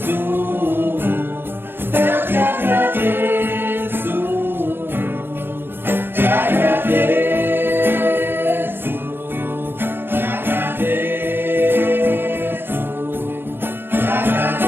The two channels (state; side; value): late; left; 0.10 ms